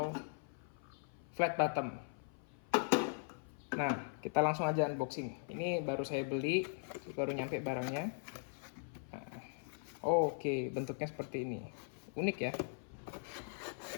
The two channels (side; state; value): right; silent; 51 dB below the other